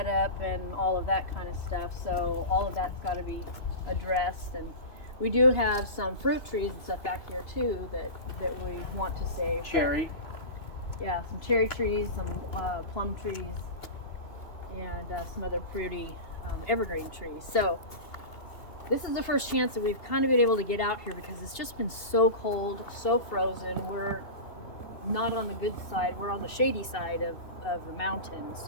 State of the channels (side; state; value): right; late; 2.5 ms